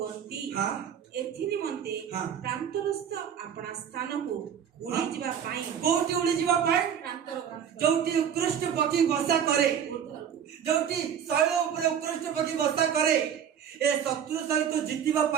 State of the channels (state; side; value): quieter; left; 8.4 dB